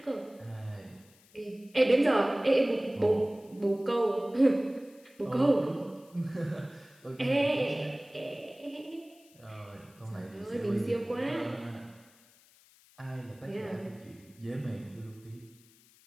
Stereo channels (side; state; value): left; noise; hiss, 28 dB below the sound